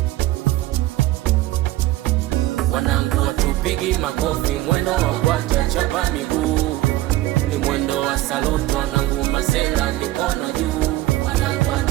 Wanangu watupigi makofi, mwendo wa kwata chapa miguu, ni mwendo wa saluto, wanangu masela mikono juu. Wanangu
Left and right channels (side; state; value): left; quieter; 16.3 dB